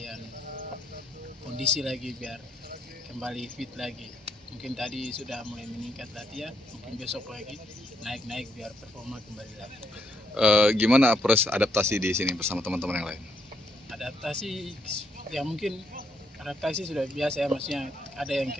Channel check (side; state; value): both; normal; correlation 0.73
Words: kondisi lagi biar kembali fit lagi. Mungkin tadi sudah mulai meningkat latihan, mungkin besok lagi naik-naik biar performa kembali lagi. Gimana proses adaptasi di sini bersama teman-teman yang lain? Adaptasi ya mungkin adaptasi sudah biasa ya, maksudnya ada yang